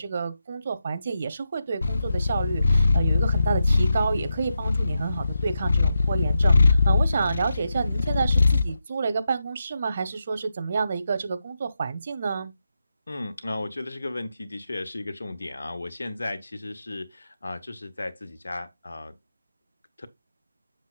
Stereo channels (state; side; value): inverted; both; correlation -0.87